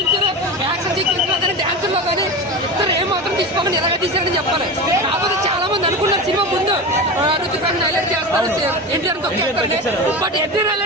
యాక్షన్ సీక్వెన్స్ లో కానీ డాన్స్ లో కానీ ఇద్దరు ఏం మాత్రం తీసుకోమని ఎలాగ తీసారని చెప్పాలి. కాకపోతే చాలా మంది అనుకున్నారు సినిమా ముందు రుతిక్ రోషన్ హైలైట్ చేస్తారు, ఎన్టీఆర్ తొక్కేస్తారు. బట్ ఎన్టీఆర్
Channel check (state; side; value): normal; both; correlation 0.25